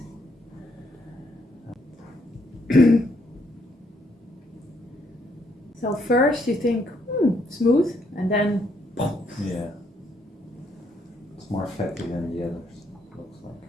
So first you think, smooth, and then Yeah. It's more fatty than the others, looks like.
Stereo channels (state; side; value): normal; both; correlation 0.72